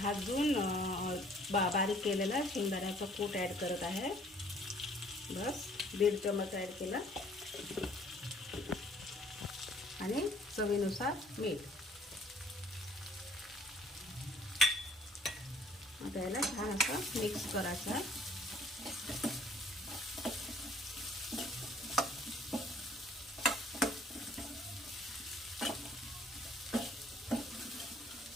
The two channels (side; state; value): both; normal; correlation 0.59